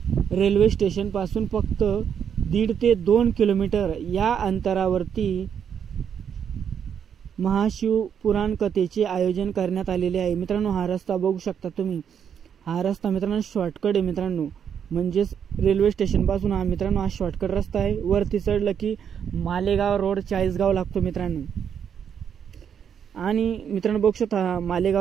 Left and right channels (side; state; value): left; quieter; 8.0 dB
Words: रेल्वे स्टेशन पासून फक्त 1.5 ते 2 किलोमीटर या अंतरावरती महाशिव पुराण कथेचे आयोजन करण्यात आलेले आहे मित्रांनो। हा रस्ता बघू शकता तुम्ही, हा रस्ता मित्रांनो शॉर्टकट आहे मित्रांनो। म्हणजेच रेल्वे स्टेशन पासून हा मित्रांनो हा शॉर्टकट रस्ता आहे। वरती चढलं की मालेगाव रोड चाळीसगाव लागतो मित्रांनो। आणि मित्रांनो बघू शकता,